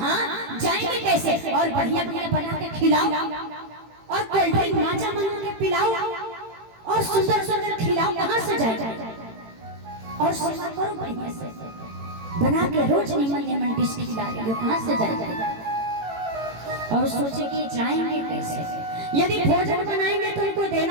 जाएंगे कैसे, और बढ़िया बढ़िया बना के खिलाओ, और कोल्ड ड्रिंक माजा बना के पिलाओ, और सुंदर सुंदर खिलाओ, कहाँ से जाएगा, और सेवा करो बढ़िया से बना के, रोज निमन निमन डिश खिला रही हो, कहाँ से जाएगा। और सोचे कि जाएंगे कैसे, यदि भोजन बनाएंगे तो उनको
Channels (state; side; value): late; left; 18 ms